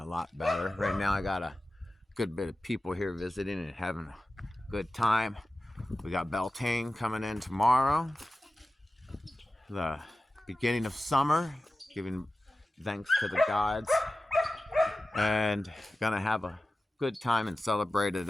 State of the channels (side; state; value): both; normal; correlation 0.95